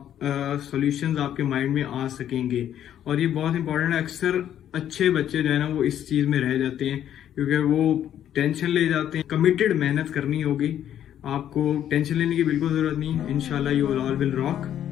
सॉल्यूशंस आपके माइंड में आ सकेंगे। और ये बहुत इंपॉर्टेंट है। अक्सर अच्छे बच्चे जो है ना वो इस चीज में रह जाते हैं, क्योंकि वो टेंशन ले जाते हैं। कमिटेड मेहनत करनी होगी, आपको टेंशन लेने की बिल्कुल जरूरत नहीं है। इंशाल्लाह you all will rock.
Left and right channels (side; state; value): right; quieter; 10.6 dB